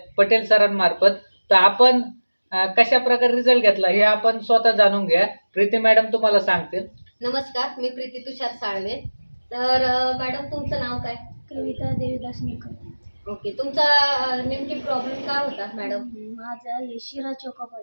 पटेल सरांमार्फत. तर आपण कशा प्रकारे रिझल्ट घेतला हे आपण स्वतः जाणून घ्या. प्रीती मॅडम तुम्हाला सांगतील. नमस्कार, मी प्रीती तुषार साळवे. तर मॅडम तुमचं नाव काय? कविता देवीदास निकम. ओके, तुमचा नेमकी प्रॉब्लेम काय होता मॅडम? माझा हे शिरा चोका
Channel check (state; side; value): inverted; both; correlation -1.00